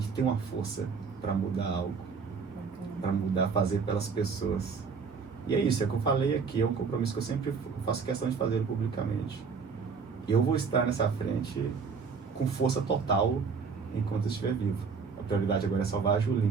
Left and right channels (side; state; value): left; quieter; 5.4 dB